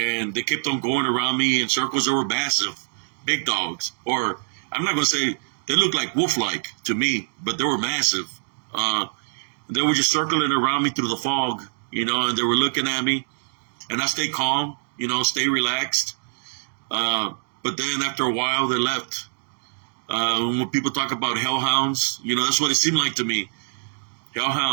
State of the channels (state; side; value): silent; left; digital silence